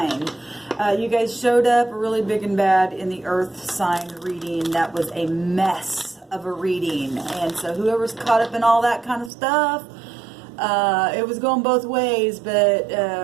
You guys showed up really big and bad in the Earth sign reading. That was a mess of a reading. And so whoever's caught up in all that kind of stuff, it was going both ways, but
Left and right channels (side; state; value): left; drops out; at 9.3 s